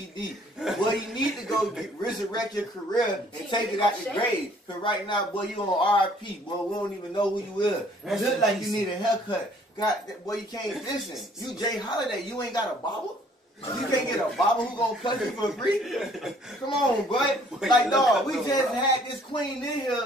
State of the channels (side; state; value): both; normal; correlation 0.59